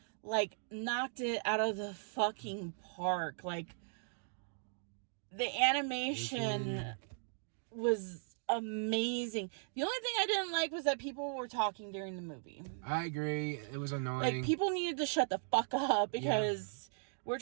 like, knocked it out of the fucking park. Like, the animation was amazing. The only thing I didn't like was that people were talking during the movie. I agree. It was annoying. Like, people needed to shut the fuck up because we're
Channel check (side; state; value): left; silent; digital silence